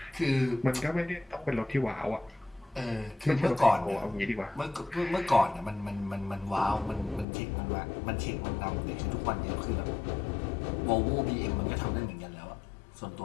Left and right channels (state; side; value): drops out; right; at 7.2 s